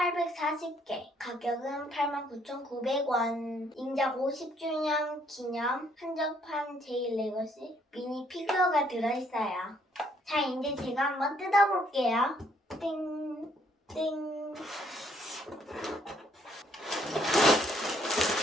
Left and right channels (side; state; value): both; normal; correlation 0.67